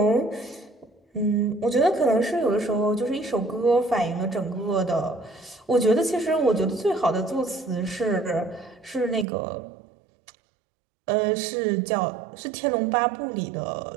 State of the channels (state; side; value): drops out; left; at 9.2 s